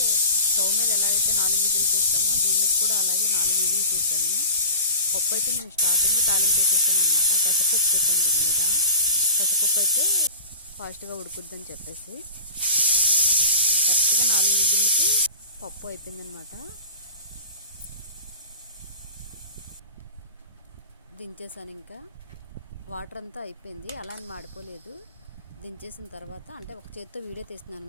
స్టవ్ మీద ఎలా అయితే 4 విజిల్ చేస్తామో దీని మీద కూడా అలాగే 4 విజిల్ చేసాము. పప్పు అయితే నేను స్టార్టింగ్ తాలింపు వేసేసాను అనమాట. పెసరపప్పు పెట్టాను దీని మీద. పెసరపప్పు అయితే ఫాస్ట్గా ఉడుకుద్దని చెప్పేసి కరెక్ట్గా 4 విజిల్కి పప్పు అయిపోయిందనమాట. దించేసాను. ఇంకా వాటర్ అంతా అయిపోయింది, అలా అని మాడిపోలేదు. దించేసిన తర్వాత అంటే ఒక చేత్తో వీడియో తీస్తున్నాను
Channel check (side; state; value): both; inverted; correlation -0.37